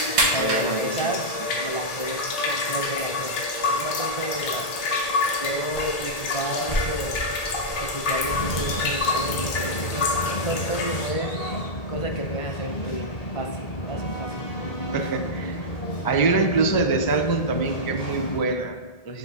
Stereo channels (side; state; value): right; late; 1.8 ms